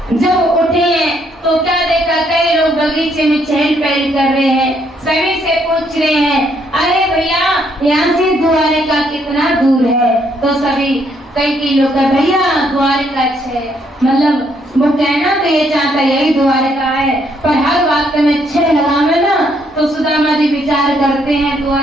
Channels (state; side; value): normal; both; correlation 0.71